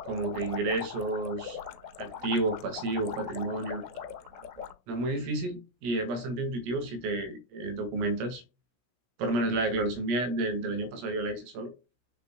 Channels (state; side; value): late; left; 16 ms